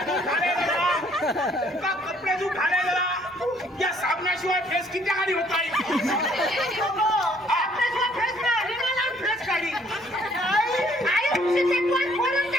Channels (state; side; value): normal; both; correlation 0.62